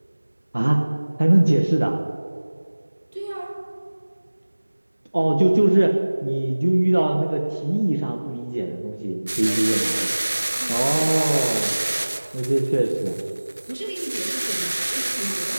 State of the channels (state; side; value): inverted; both; correlation -1.00